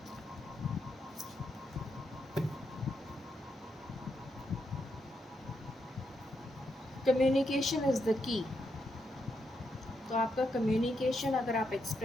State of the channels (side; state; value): both; normal; correlation 0.81